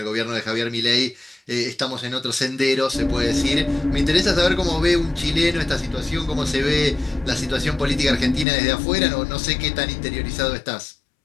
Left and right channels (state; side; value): drops out; right; at 8.5 s